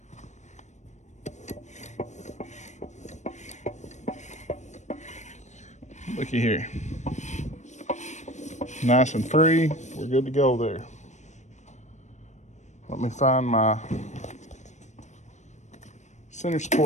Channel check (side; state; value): right; late; 0.34 ms